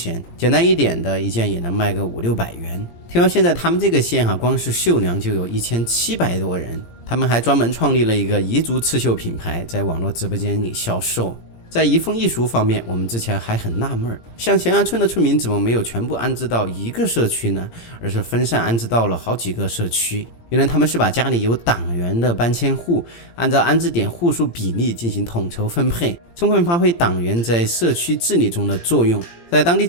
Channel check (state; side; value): late; right; 17 ms